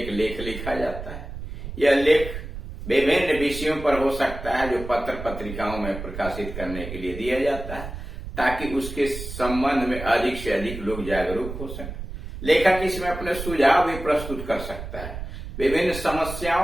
लेख लिखा जाता है। यह लेख विभिन्न विषयों पर हो सकता है जो पत्र पत्रिकाओं में प्रकाशित करने के लिए दिया जाता है, ताकि उसके संबंध में अधिक से अधिक लोग जागरूक हो सकें। लेखक इसमें अपने सुझाव भी प्रस्तुत कर सकता है। विभिन्न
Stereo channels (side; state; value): right; noise; rumble, 9 dB below the sound